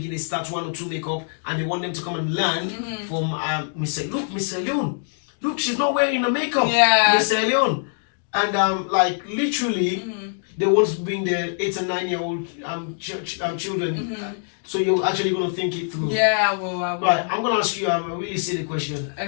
start 1 or 2 makeup, and they want them to come and learn from Miss Leon. Look, she's not wearing the makeup. Miss Leon. And literally, they want to bring their 8 and 9 year old children. So you're actually going to think it through. I will. Right, I'm going to ask you a really silly question.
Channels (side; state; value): right; silent; digital silence